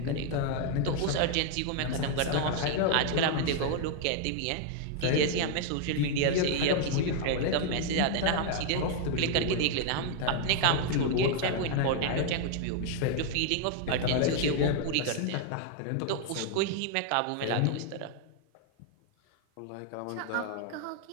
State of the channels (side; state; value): both; different; correlation 0.00